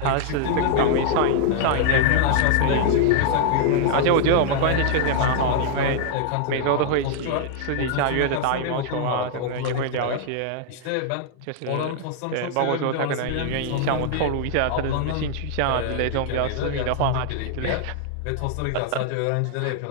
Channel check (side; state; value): both; different; correlation 0.00